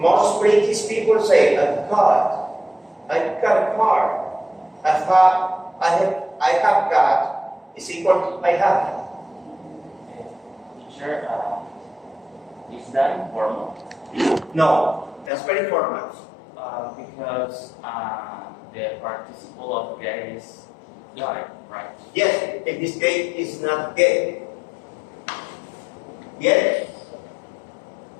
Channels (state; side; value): drops out; right; at 15.3 s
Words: British people say, I've got a car. I have got is equal to I have. Teacher, is that informal? No, that's very formal. Because the participle of get is got, right? Yes, in this case is not get. Get?